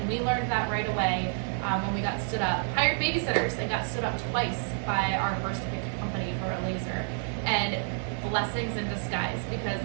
we learned that right away when we got stood up. Hired babysitters and got stood up twice by our first big company for a laser. And blessings in disguise, because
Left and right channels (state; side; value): silent; left; 59 dB below the other